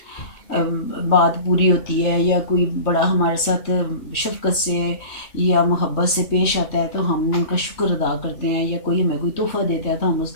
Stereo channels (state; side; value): late; right; 3.3 ms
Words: बात पूरी होती है, या कोई बड़ा हमारे साथ शफ़क़त से या मोहब्बत से पेश आता है, तो हम उनका शुक्र अदा करते हैं, या कोई हमें कोई तोहफ़ा देता है तो हम